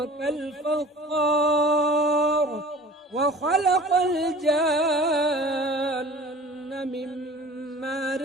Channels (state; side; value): normal; both; correlation 0.44